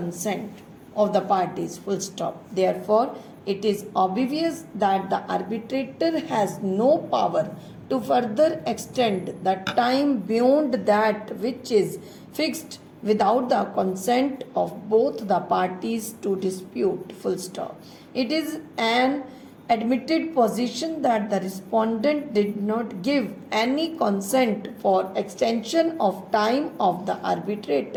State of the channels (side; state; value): both; identical; correlation 1.00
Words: of the parties. Full stop. Therefore, it is obvious that the arbitrator has no power to further extend the time beyond that which is fixed without the consent of both the parties to dispute. Full stop. It is an admitted position that the respondent did not give any consent for extension of time of the